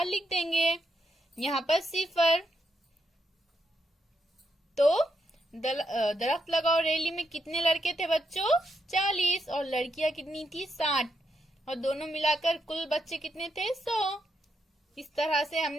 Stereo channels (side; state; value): both; normal; correlation 0.81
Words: लिख देंगे। यहाँ पर सिफर। तो दरख्त लगाओ रैली में कितने लड़के थे बच्चों, 40, और लड़कियां कितनी थी, 60, और दोनों मिलाकर कुल बच्चे कितने थे, 100। इस तरह से